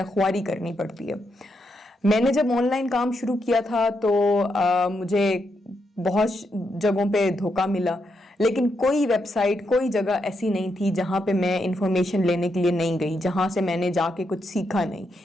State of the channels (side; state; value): both; normal; correlation 0.81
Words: ख्वारी करनी पड़ती है। मैंने जब ऑनलाइन काम शुरू किया था तो मुझे بہت جگہوں پہ دھوکہ ملا، لیکن کوئی ویب سائٹ، کوئی جگہ ایسی نہیں تھی جہاں پہ میں انفارمیشن لینے کے لیے نہیں گئی، جہاں سے میں نے جا کے کچھ سیکھا نہیں۔